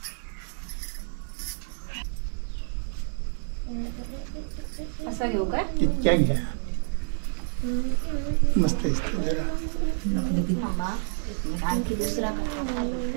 असं घेऊ काय? इतक्या घ्या, मस्त आणखी दुसरा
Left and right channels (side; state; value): left; silent; 59 dB below the other